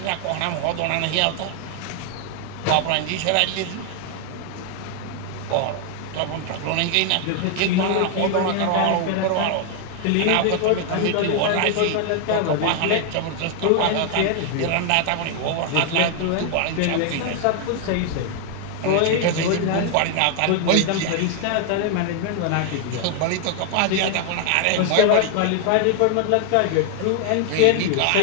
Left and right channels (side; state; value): both; different; correlation 0.00